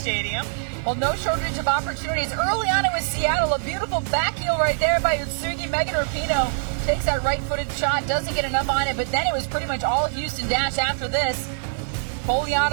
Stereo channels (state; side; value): silent; left; digital silence